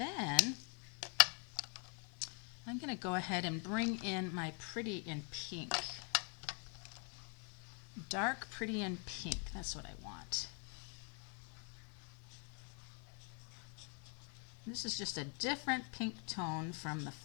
I'm going to go ahead and bring in my Pretty in Pink. Dark Pretty in Pink, that's what I want. This is just a different pink tone from the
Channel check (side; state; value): right; quieter; 38.5 dB